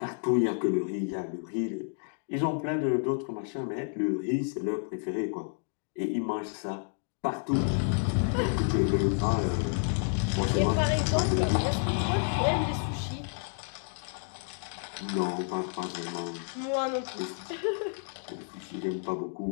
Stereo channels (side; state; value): right; silent; 58 dB below the other